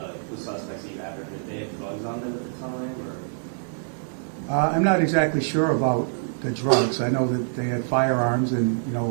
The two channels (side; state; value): left; silent; digital silence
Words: suspects you have, if they have drugs on them at the time, or? I'm not exactly sure about the drugs. I know that they had firearms, and